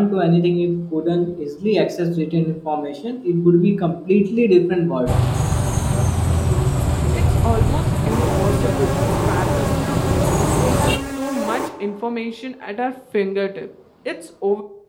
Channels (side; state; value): both; identical; correlation 1.00